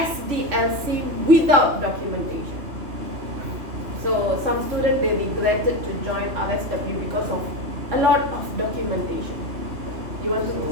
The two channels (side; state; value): left; late; 3.1 ms